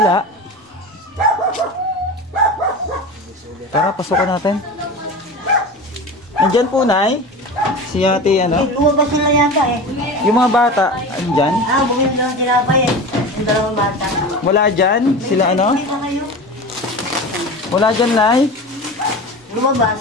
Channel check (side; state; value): both; normal; correlation 0.30